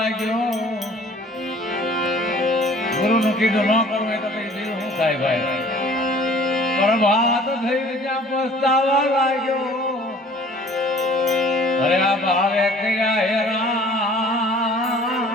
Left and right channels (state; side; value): normal; both; correlation 0.51